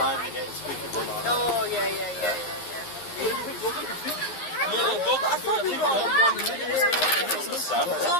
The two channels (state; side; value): late; right; 11 ms